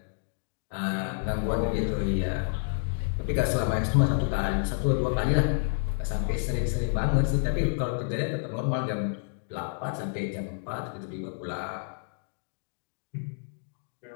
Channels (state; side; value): silent; right; digital silence